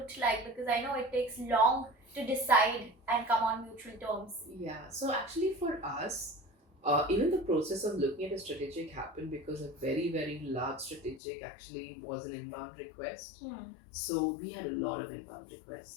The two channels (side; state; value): right; drops out; at 11.2 s